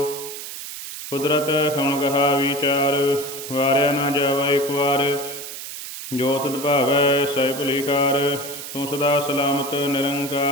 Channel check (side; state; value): right; noise; hiss, 9 dB below the sound